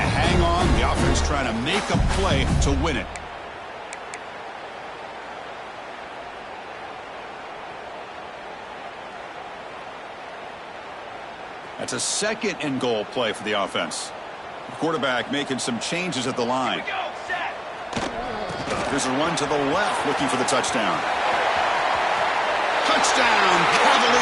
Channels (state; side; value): identical; both; correlation 1.00